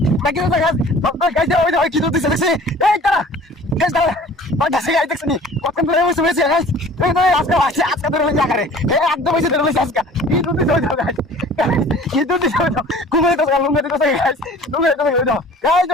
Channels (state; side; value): normal; both; correlation 0.47